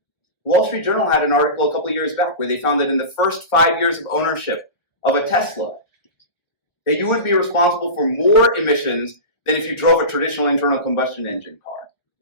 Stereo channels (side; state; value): right; late; 1.3 ms